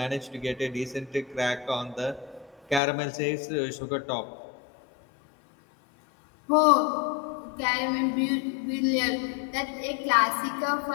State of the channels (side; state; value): right; drops out; at 2.8 s